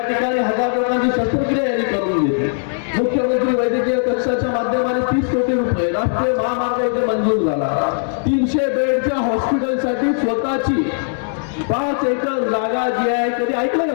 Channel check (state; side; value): silent; right; 67 dB below the other